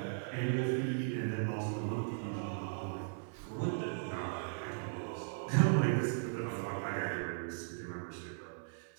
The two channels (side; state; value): left; silent; 53 dB below the other